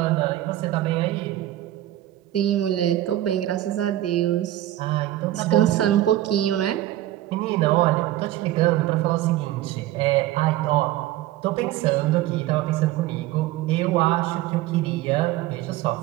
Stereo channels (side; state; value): left; quieter; 14.5 dB